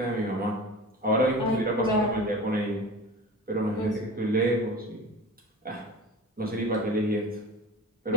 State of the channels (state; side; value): normal; both; correlation 0.35